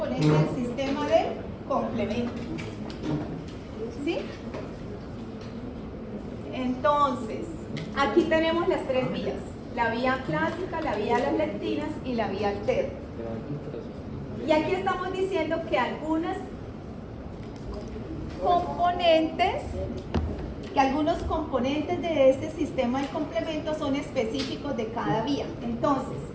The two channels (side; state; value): both; identical; correlation 1.00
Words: del sistema de complemento. ¿Sí? Entonces, aquí tenemos las 3 vías, la vía clásica, la vía de las lectinas y la vía alterna. Y aquí estamos diciendo que algunos componentes de este sistema de complemento son específicos de cada vía. Entonces,